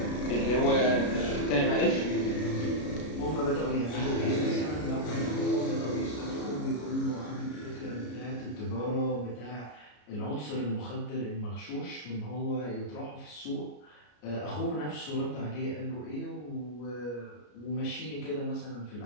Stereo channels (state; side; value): late; right; 33 ms